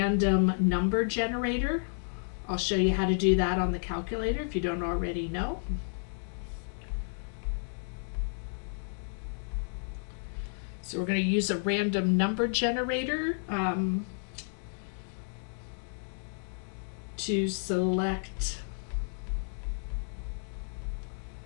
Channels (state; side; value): silent; right; digital silence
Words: number generator. I'll show you how to do that on the calculator if you don't already know. So we're going to use a random number generator to select